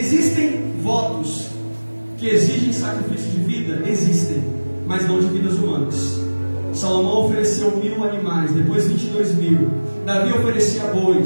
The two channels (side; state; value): both; inverted; correlation -1.00